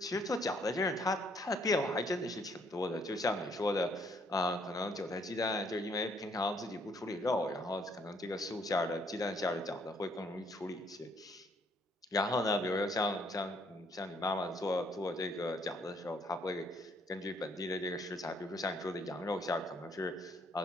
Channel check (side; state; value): both; normal; correlation 0.67